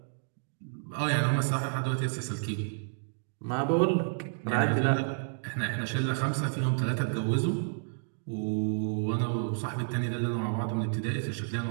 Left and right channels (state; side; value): silent; left; digital silence